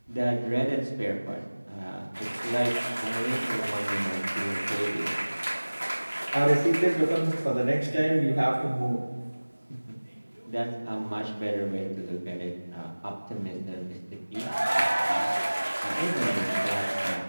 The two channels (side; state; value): both; inverted; correlation -1.00